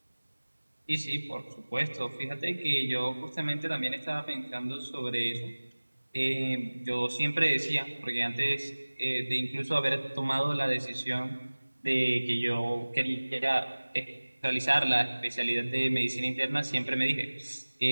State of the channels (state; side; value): inverted; both; correlation -1.00